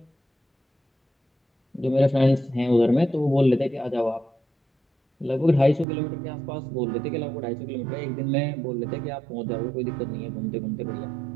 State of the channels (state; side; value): drops out; left; at 5.9 s